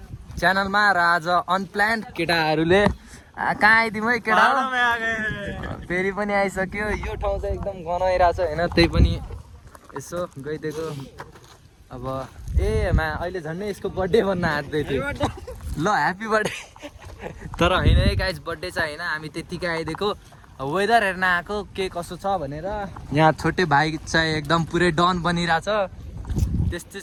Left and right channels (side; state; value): both; identical; correlation 1.00